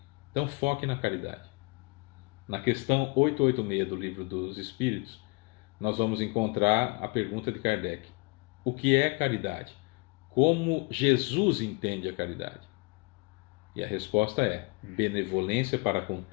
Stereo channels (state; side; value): quieter; right; 28.9 dB